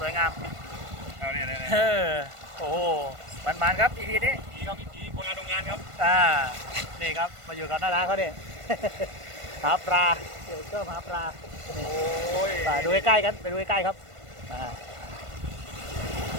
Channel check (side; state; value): left; late; 1.5 ms